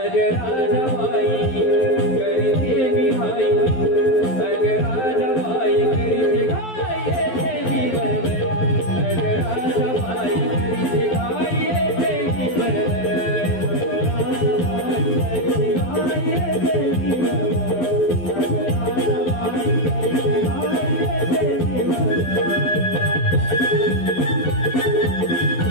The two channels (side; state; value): right; late; 12 ms